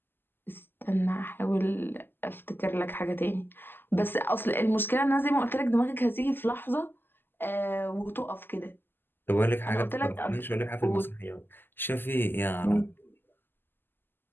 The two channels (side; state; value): right; late; 0.096 ms